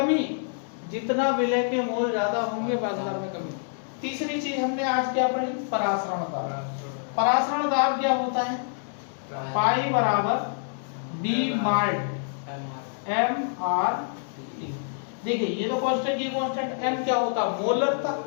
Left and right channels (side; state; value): right; silent; digital silence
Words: जितना विलय के मोल ज्यादा होंगे वाष्पदाब में कमी। तीसरी चीज हमने आज क्या पढ़ी, परासरण दाब। परासरण दाब क्या होता है, पाई बराबर डी माल्ट एम आर टी। देखिए ये तो कांस्टेंट, ये कांस्टेंट। एम क्या होता है, मोलरता।